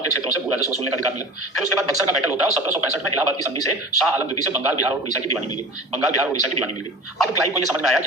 के क्षेत्रों से भू राजस्व वसूलने का अधिकार मिला। फिर उसके बाद बक्सर का बैटल होता है और 1765 में इलाहाबाद की संधि से शाह आलम द्वितीय से बंगाल, बिहार और उड़ीसा की दीवानी मिल गई। बंगाल, बिहार और उड़ीसा की दीवानी मिल गई। अब क्लाइव को यह समझ में आया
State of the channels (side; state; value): both; normal; correlation 0.36